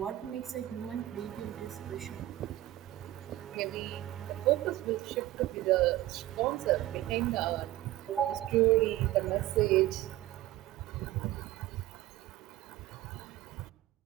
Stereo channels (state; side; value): quieter; left; 15.2 dB